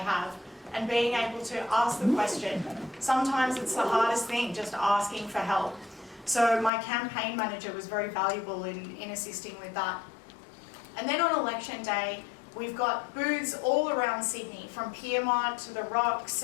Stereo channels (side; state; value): right; drops out; at 6.7 s